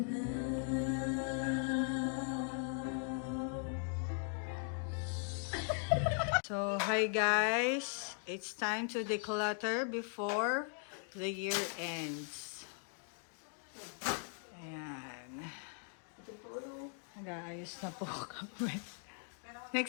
hi guys. It's time to declutter before the year ends. Ayan. Nag-aayos na po kami.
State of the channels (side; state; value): right; silent; 52 dB below the other